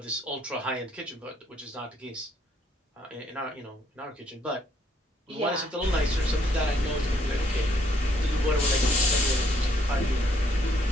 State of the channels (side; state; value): both; normal; correlation 0.69